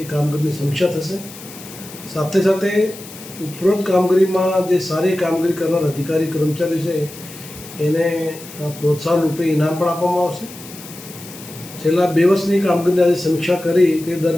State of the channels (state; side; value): noise; left; hiss, 16 dB below the sound